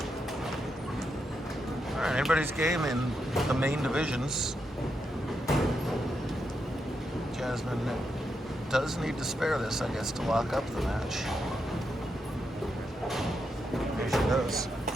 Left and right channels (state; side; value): normal; both; correlation 0.84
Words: Alright, anybody's game in the main divisions. Jasmine does need to spare this, I guess, to lock up the match. There she goes.